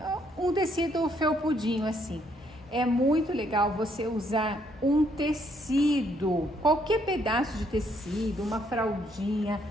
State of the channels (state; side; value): normal; both; correlation 0.70